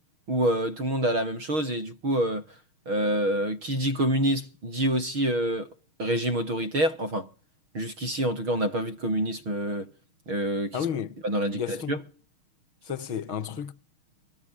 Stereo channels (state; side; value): late; left; 6.4 ms